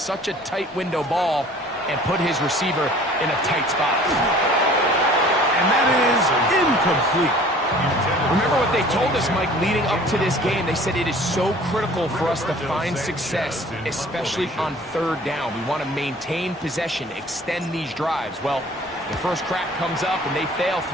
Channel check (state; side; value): normal; both; correlation 0.49